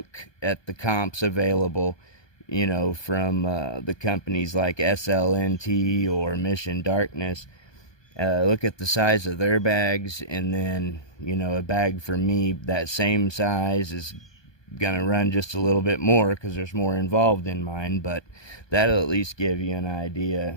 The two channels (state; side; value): late; right; 1.2 ms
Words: at the comps available, you know, from the companies like SLNT or Mission Darkness. Look at the size of their bags, and then, you know, a bag for me that same size is gonna run just a little bit more because there's more involved in mine, but that'll at least give you an idea.